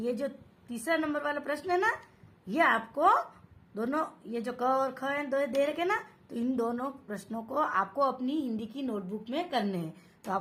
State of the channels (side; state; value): both; identical; correlation 1.00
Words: जो तीसरा नंबर वाला प्रश्न है ना, ये आपको दोनों, ये जो क और ख है दो दे रखे ना, तो इन दोनों प्रश्नों को आपको अपनी हिंदी की नोटबुक में करने हैं। तो